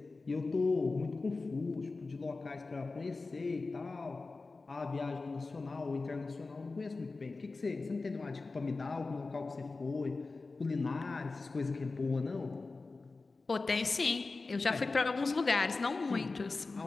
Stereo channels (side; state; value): right; quieter; 3.7 dB